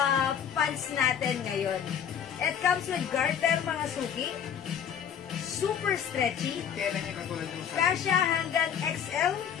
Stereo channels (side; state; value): right; quieter; 8.5 dB